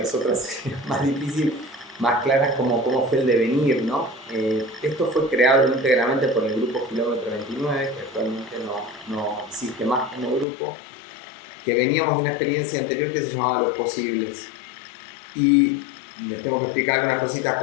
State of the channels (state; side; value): drops out; right; at 10.5 s